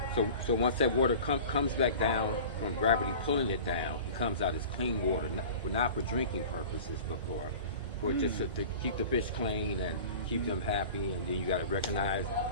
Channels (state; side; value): inverted; both; correlation -0.39